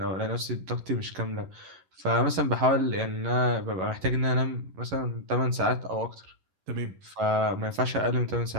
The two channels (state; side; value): late; left; 11 ms